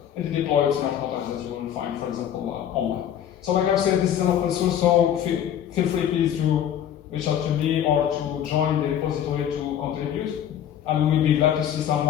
the deployed smart contracts that you will find, for example, online. So like I've said, this is an open source, so feel free please to reach out to me or to join the repository to contribute. And we'll be glad to see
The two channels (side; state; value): right; quieter; 10.0 dB